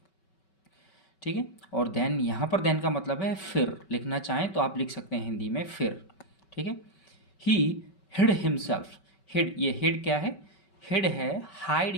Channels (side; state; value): right; late; 5.3 ms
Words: ठीक है, और देन, यहाँ पर देन का मतलब है फिर। लिखना चाहें तो आप लिख सकते हैं हिंदी में फिर। ठीक है, ही हिड हिमसेल्फ। हिड, ये हिड क्या है? हिड है